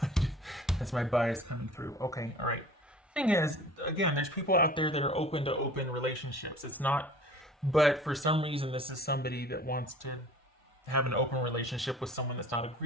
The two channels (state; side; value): normal; both; correlation 0.45